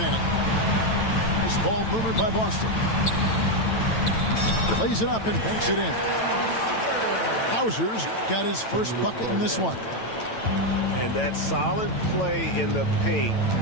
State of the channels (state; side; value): late; right; 9.0 ms